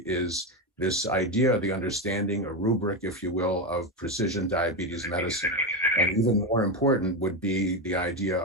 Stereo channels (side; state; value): both; normal; correlation 0.13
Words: is this idea, the understanding, a rubric, if you will, of precision diabetes medicine. And even more important would be the idea